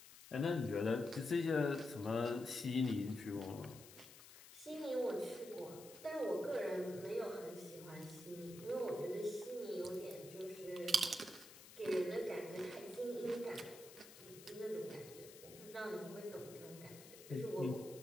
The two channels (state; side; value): noise; left; hiss, 17 dB below the sound